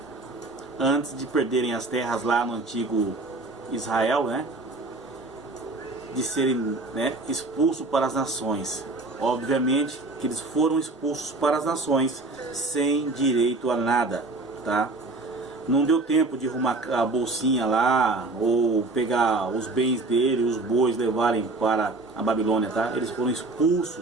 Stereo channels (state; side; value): quieter; left; 3.2 dB